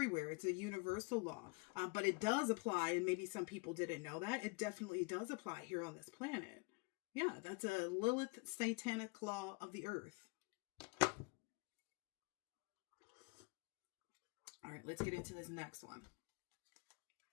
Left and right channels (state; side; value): quieter; right; 30.0 dB